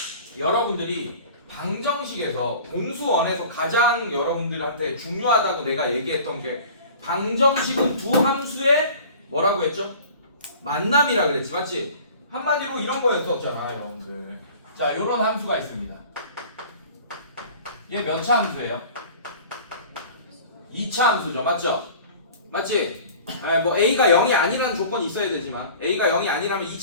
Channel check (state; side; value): inverted; both; correlation -0.43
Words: 여러분들이 방정식에서 공수원에서 가장 여러분들한테 중요하다고 내가 얘기했던 게 방정식은 두 함수의 뭐라고 했죠? 만남이라 그랬지, 맞지? 한마디로 이런 거였었잖아, 여러분들. 자, 요런 함수가 있습니다. 얘 몇 차 함수예요? 2차 함수죠, 맞죠? 맞지? 뭐 A가 0이 아니라는 조건이 있어야 되지만 A가 0이 아니라면